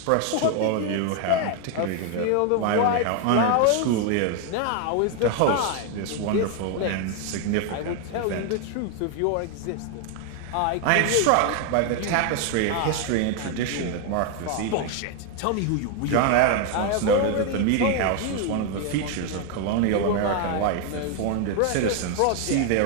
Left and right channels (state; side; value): different; both; correlation 0.01